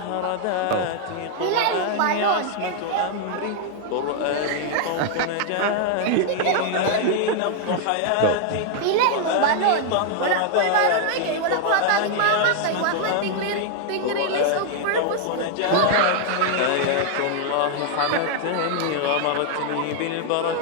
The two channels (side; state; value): both; different; correlation 0.00